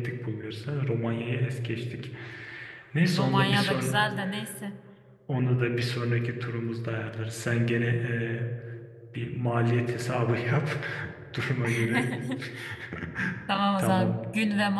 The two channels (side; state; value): both; identical; correlation 1.00